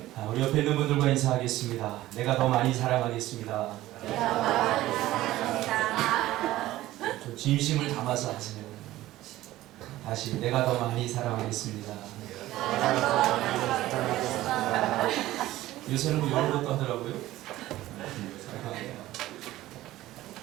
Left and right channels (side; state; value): left; quieter; 15.8 dB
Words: 우리 옆에 있는 분들과 인사하겠습니다. 내가 더 많이 사랑하겠습니다. 좀 진심을 담아서 하세요. 다시 내가 더 많이 사랑하겠습니다. 요새는 뭐 이런 것도 하더라고요.